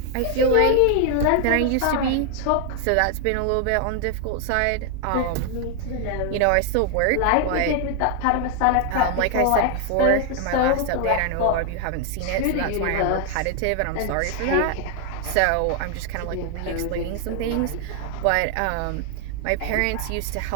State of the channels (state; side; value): different; both; correlation 0.00